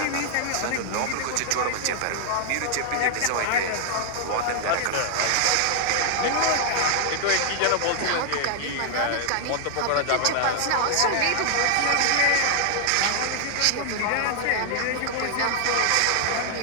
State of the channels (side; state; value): both; different; correlation 0.00